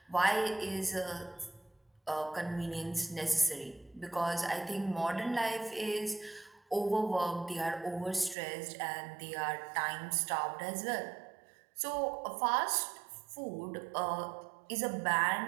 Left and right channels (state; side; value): drops out; left; at 8.3 s